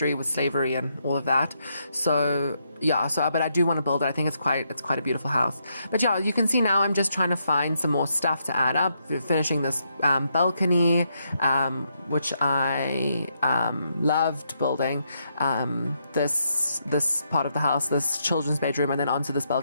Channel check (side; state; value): both; inverted; correlation -0.78